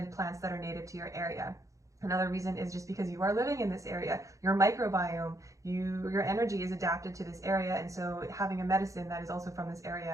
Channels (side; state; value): left; late; 0.15 ms